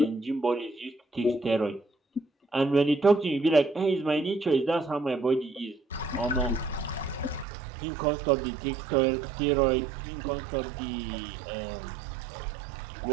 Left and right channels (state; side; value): drops out; left; at 7.5 s